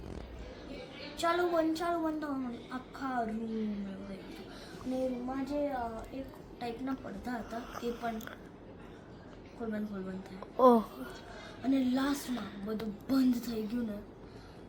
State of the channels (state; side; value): identical; both; correlation 1.00